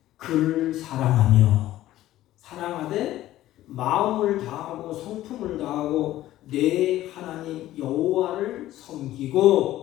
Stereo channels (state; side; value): quieter; right; 14.5 dB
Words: 그를 사랑하되 마음을 다하고 성품을 다하고 내 하나님 여호와를